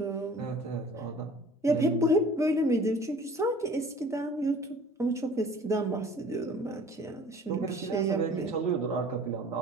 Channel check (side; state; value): both; normal; correlation 0.47